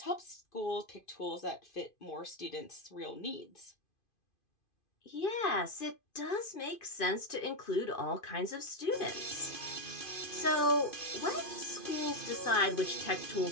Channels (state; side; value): late; right; 2.5 ms